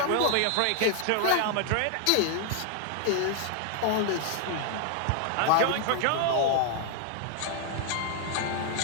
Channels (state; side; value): different; both; correlation 0.00